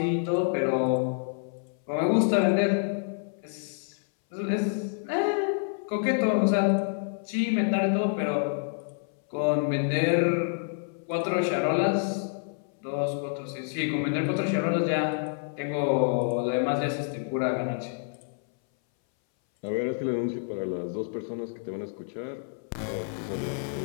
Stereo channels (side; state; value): right; silent; 59 dB below the other